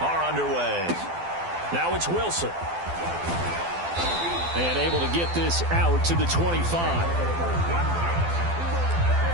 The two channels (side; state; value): left; late; 12 ms